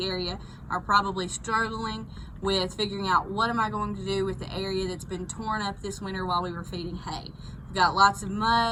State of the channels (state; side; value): identical; both; correlation 1.00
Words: area are probably struggling with figuring out what am I going to do with the area that's been torn up this winter while we were feeding hay. We've got lots of